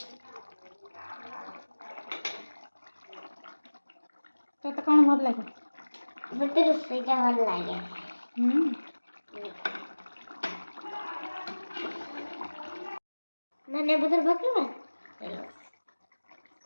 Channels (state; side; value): inverted; both; correlation -1.00